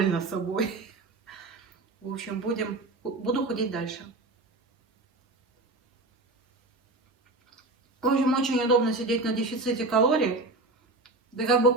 собой. В общем, буду худеть дальше. В общем, очень удобно сидеть на дефиците калорий. Ты как бы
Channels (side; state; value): left; quieter; 3.0 dB